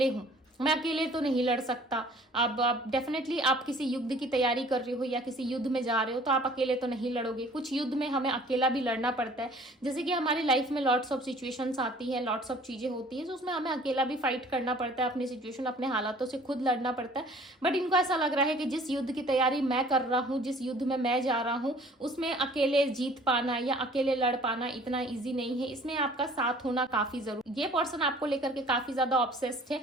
हूं, मैं अकेले तो नहीं लड़ सकता। अब डेफिनेटली आप किसी युद्ध की तैयारी कर रहे हो या किसी युद्ध में जा रहे हो तो आप अकेले तो नहीं लड़ोगे। कुछ युद्ध में हमें अकेला भी लड़ना पड़ता है, जैसे कि हमारी लाइफ में लॉट्स ऑफ सिचुएशंस आती है, लॉट्स ऑफ चीजें होती है, तो उसमें हमें अकेला भी फाइट करना पड़ता है, अपनी सिचुएशन, अपने हालातों से खुद लड़ना पड़ता है। बट इनको ऐसा लग रहा है कि जिस युद्ध की तैयारी मैं कर रहा हूँ, जिस युद्ध में मैं जा रहा हूँ, उसमें अकेले जीत पाना या अकेले लड़ पाना इतना ईजी नहीं है, इसमें आपका साथ होना काफी जरूरी। ये पर्सन आपको लेकर के काफी ज्यादा ऑब्सेस्ड है,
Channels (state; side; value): normal; both; correlation 0.52